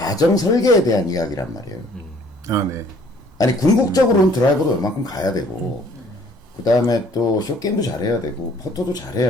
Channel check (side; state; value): both; normal; correlation 0.58